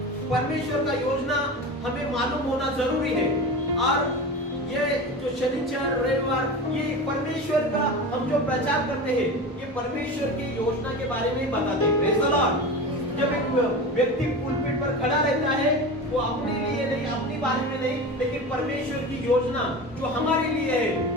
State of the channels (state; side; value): normal; both; correlation 0.29